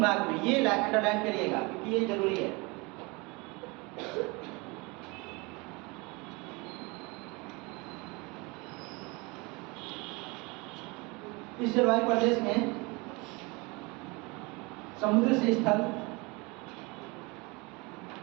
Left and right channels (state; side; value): quieter; left; 26.6 dB